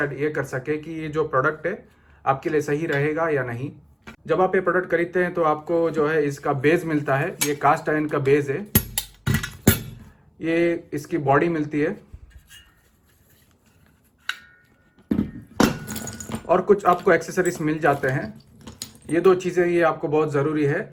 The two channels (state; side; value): identical; both; correlation 1.00